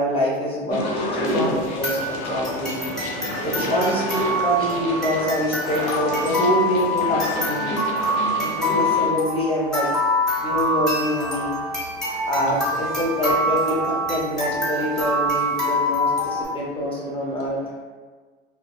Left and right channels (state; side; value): normal; both; correlation 0.20